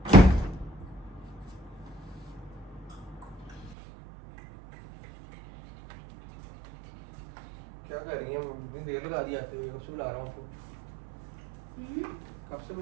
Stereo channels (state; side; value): drops out; left; at 3.8 s